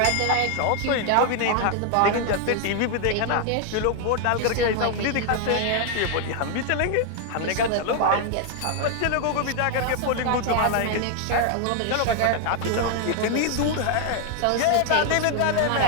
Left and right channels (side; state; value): both; different; correlation 0.00